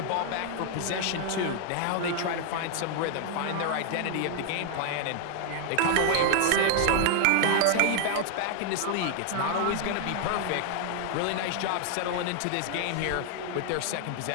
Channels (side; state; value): both; different; correlation 0.00